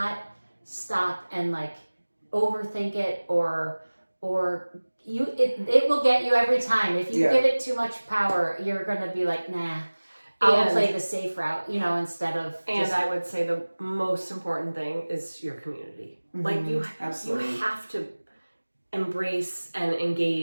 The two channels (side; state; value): both; inverted; correlation -1.00